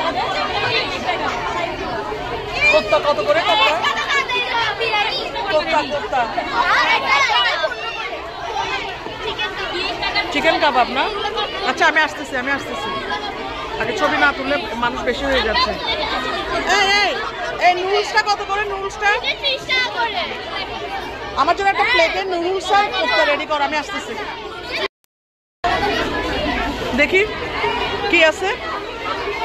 কোপ্তা কত করে? কোপ্তা কোপ্তা চিকেন কাবাব না? আচ্ছা আমি আসতেছি আগে ছবি না তুললে মানুষ বেশি হয়ে যাচ্ছে। এই নুডলসটা কত করে? নুডলসটা আমার জন্য একটা প্লেটে নুডলস আর কোপ্তা রেডি কর, আমি আসতেছি। দেখি কি আছে।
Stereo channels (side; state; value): both; identical; correlation 1.00